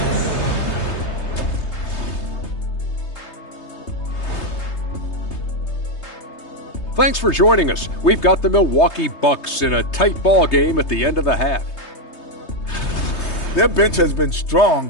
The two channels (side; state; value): right; late; 3.3 ms